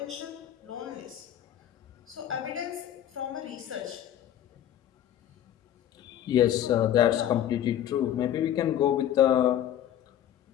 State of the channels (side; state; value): right; quieter; 11.2 dB